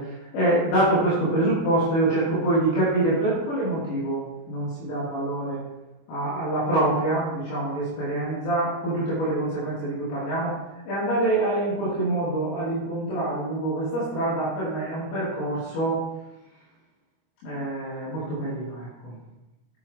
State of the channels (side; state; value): right; late; 25 ms